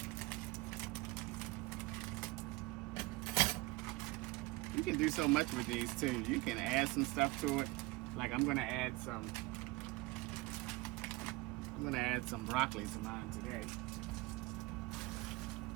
You can do so much with these too. You can add some stuff to it. Like I'm gonna add some broccoli to mine today.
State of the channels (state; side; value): quieter; left; 21.9 dB